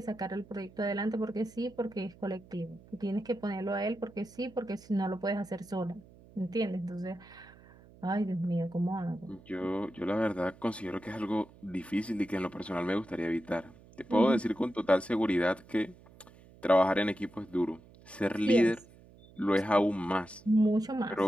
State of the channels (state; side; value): noise; right; hum, 23 dB below the sound